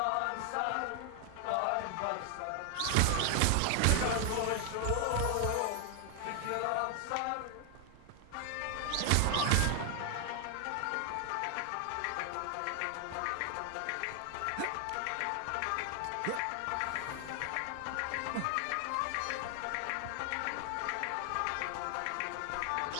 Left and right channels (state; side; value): different; both; correlation 0.00